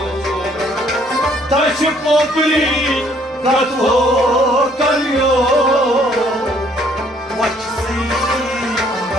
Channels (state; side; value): normal; both; correlation 0.63